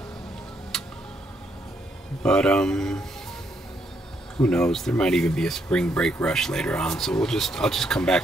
But who knows? There might even be a spring break rush later on. So I'll just come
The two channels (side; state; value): both; normal; correlation 0.75